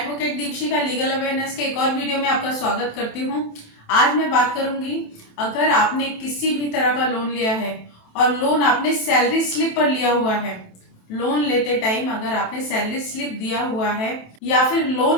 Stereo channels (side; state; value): right; late; 27 ms